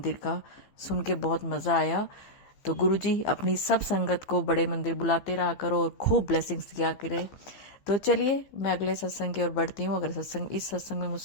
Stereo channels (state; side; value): late; right; 15 ms